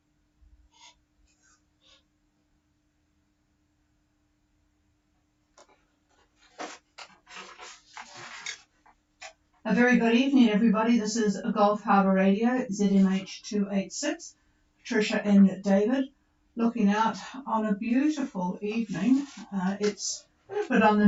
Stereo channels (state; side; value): identical; both; correlation 1.00